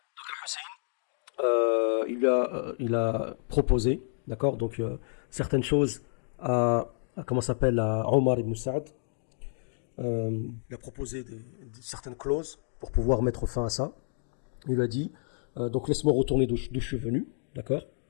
Donc, Hussein, il a proposé, d'accord, donc certaines choses à Omar ibn Sa'd, il a proposé certaines clauses pour pouvoir mettre fin à ça. Il lui a dit, donc laisse-moi retourner d'où je suis venu, d'accord?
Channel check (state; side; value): silent; right; digital silence